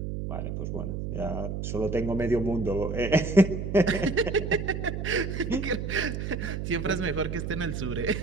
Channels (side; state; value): right; noise; hum, 4 dB below the sound